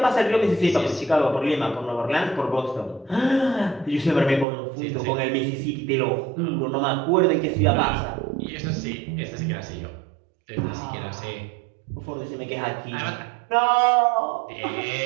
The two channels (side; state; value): left; drops out; at 4.5 s